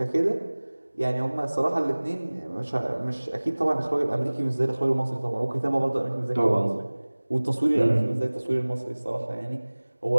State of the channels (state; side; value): inverted; both; correlation -1.00